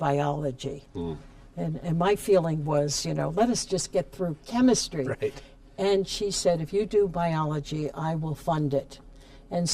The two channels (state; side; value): identical; both; correlation 1.00